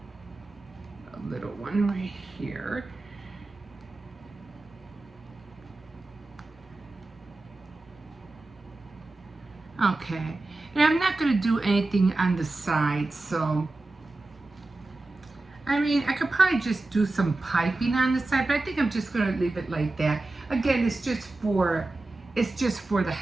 a little one right here. Okay, and I'm not going to do anything on the side, so I mean, I could probably just do some piping on the side, but I think I'm just going to leave it like that. Again, it's just for the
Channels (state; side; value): quieter; left; 3.0 dB